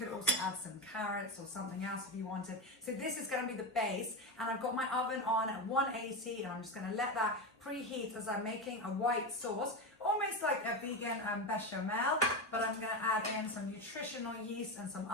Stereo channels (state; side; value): normal; both; correlation 0.16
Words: also add some carrots or something else if you wanted. So this is going to be the base, and I've got my oven on at 180, and I'm just going to let that preheat as I'm making a white sauce, almost like a vegan bechamel, but I'm going to add in some nutritional yeast and some